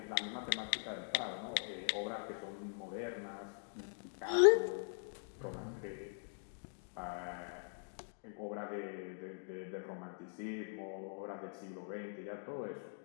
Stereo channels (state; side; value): silent; right; digital silence